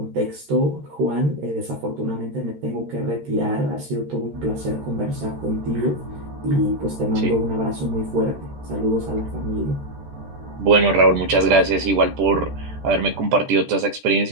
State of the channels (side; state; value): left; late; 14 ms